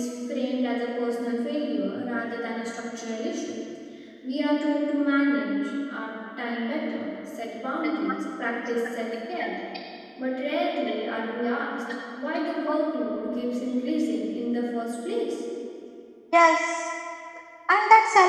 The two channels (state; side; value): identical; both; correlation 1.00